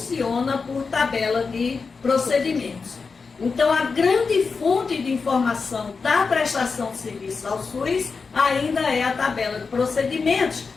por tabela de procedimentos. Então, a grande fonte de informação da prestação de serviços ao SUS ainda é a tabela de procedimentos,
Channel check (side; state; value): right; quieter; 4.8 dB